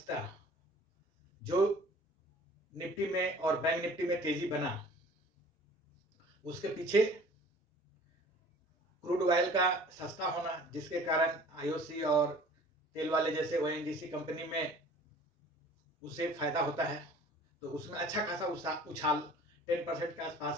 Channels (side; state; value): both; normal; correlation 0.48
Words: जो निफ्टी में और बैंक निफ्टी में तेजी बना, उसके पीछे क्रूड ऑयल का सस्ता होना, जिसके कारण आईओसी और तेल वाले जैसे ओएनजीसी कंपनी में उसे फायदा होता है, तो उसमें अच्छा खासा उछाल 10% के